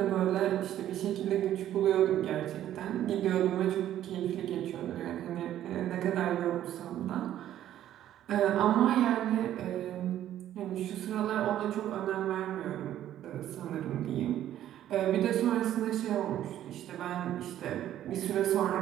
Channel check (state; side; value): quieter; left; 12.0 dB